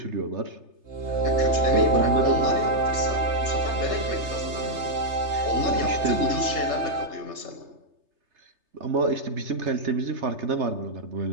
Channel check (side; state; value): left; late; 3.3 ms